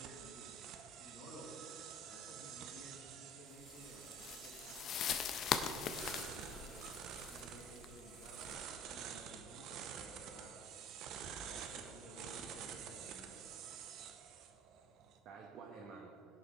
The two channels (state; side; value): normal; both; correlation 0.49